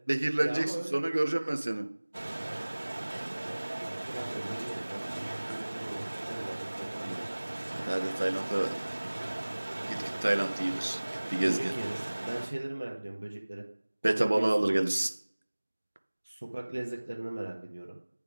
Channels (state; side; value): inverted; both; correlation -1.00